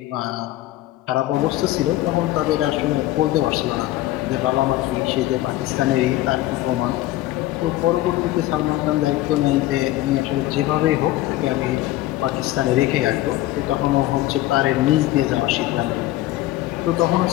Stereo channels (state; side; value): quieter; right; 15.9 dB